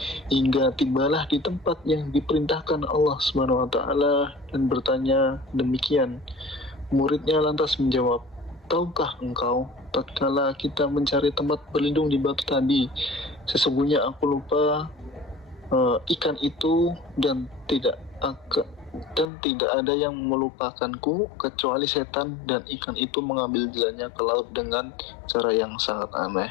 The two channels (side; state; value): right; drops out; at 19.2 s